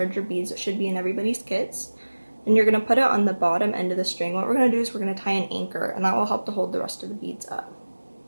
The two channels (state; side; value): inverted; both; correlation -1.00